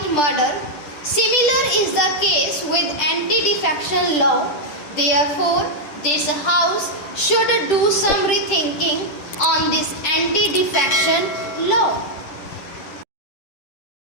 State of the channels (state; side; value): late; right; 10 ms